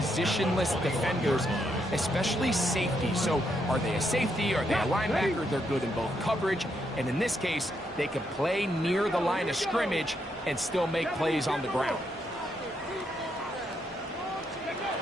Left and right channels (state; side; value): normal; both; correlation 0.78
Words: defenders, especially safety. So are they a safety? Are they a linebacker? They're good in both coverage. And in this case, they can play near the line of scrimmage and still make plays on the ground.